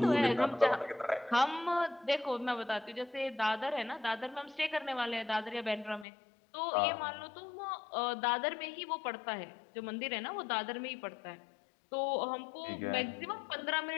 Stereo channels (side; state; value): right; drops out; at 6.1 s